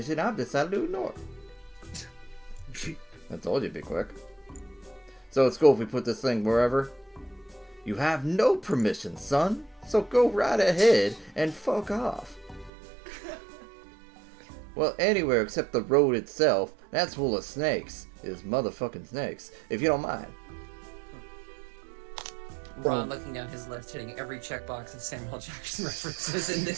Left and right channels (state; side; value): drops out; left; at 12.7 s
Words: I've decided to ignore it. I told you it'd be quick. So it's cool if we put this thing wherever? You have no permission, son. So go right ahead and fuck off. Well, anywhere except the road itself. That's full of snakes. Is motherfucking snakes. If you don't mind. Ron looking down his list, hitting every checkbox of Samuel Jackson references in this